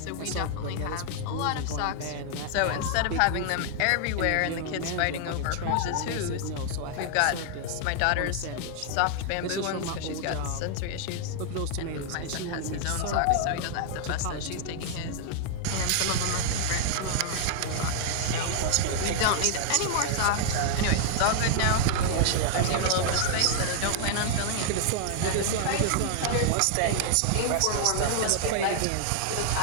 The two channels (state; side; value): different; both; correlation 0.00